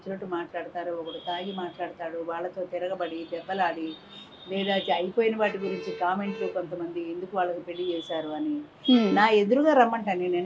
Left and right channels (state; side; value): identical; both; correlation 1.00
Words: మాట్లాడతారు. ఒకడు తాగి మాట్లాడతాడు, వాళ్ళతో తిరగబడి దెబ్బలాడి, లేదా అయిపోయిన వాటి గురించి కామెంట్లు, కొంతమంది ఎందుకు వాళ్ళకి పెళ్లి చేశారు అని నా ఎదురుగా రమ్మంటాను. నేను